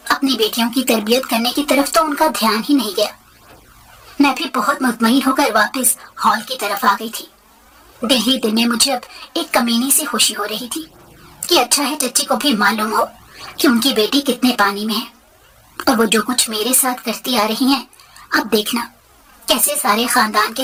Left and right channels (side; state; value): both; identical; correlation 1.00